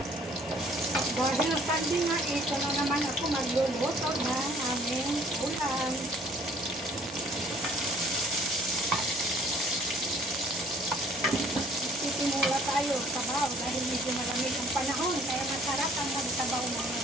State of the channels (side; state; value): both; normal; correlation 0.56